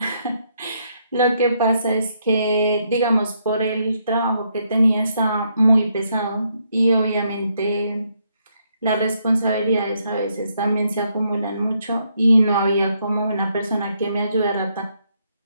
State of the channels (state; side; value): inverted; both; correlation -0.75